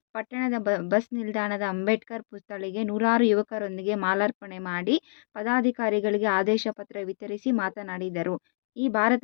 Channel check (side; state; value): right; silent; digital silence